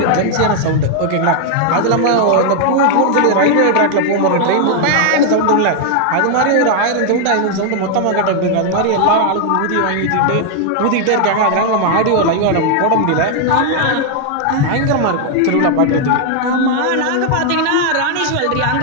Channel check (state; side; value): different; both; correlation 0.00